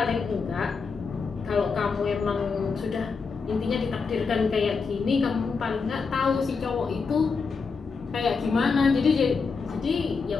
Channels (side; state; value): right; quieter; 5.0 dB